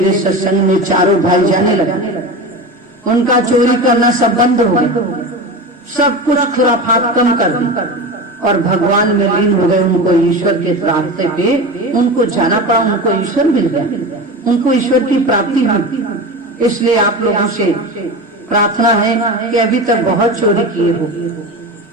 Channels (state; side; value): normal; both; correlation 0.27